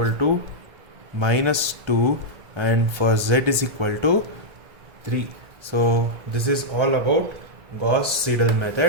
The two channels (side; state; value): left; late; 1.8 ms